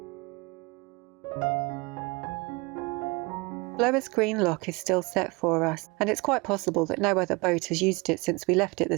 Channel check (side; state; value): left; quieter; 26.4 dB